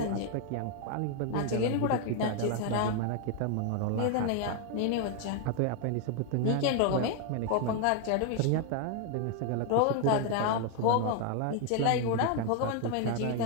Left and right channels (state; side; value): different; both; correlation 0.01